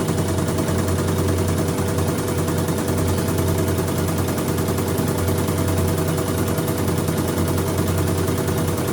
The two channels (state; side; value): noise; left; rumble, 24 dB below the sound